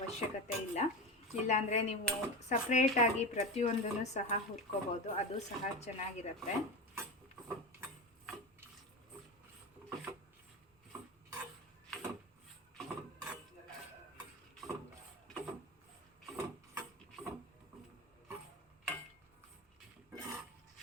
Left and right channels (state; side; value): normal; both; correlation 0.22